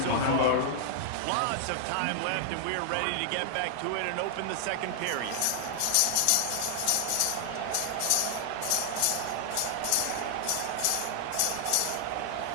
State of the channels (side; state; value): both; different; correlation 0.00